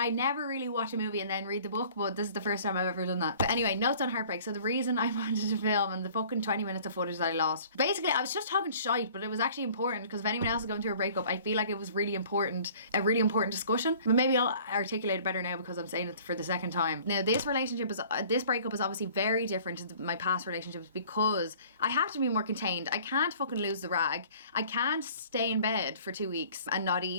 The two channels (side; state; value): both; inverted; correlation -0.51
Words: never really watch a movie and then read the book, but this is the first time I've ever done that. But anyway, notes on heartbreak. So the reason I wanted to film and the fucking 20 minutes of footage that I lost, basically I was just talking shite light, but it was actually important, because if anyone else is going through a breakup, I feel like it was a really important discussion. But maybe I'll articulate it better now because I'm saying it for the second time. Now, this breakup is obviously very different to my past relationships, because I have to be more contained. I can't fucking lose the rag. I can't stay in bed for 2 weeks and not